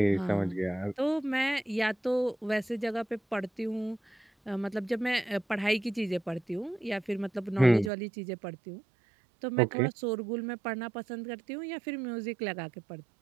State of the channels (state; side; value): drops out; left; at 7.9 s